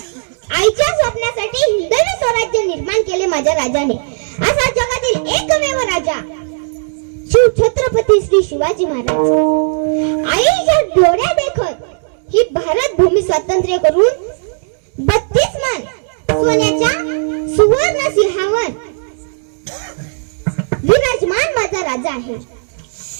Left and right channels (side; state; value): left; silent; digital silence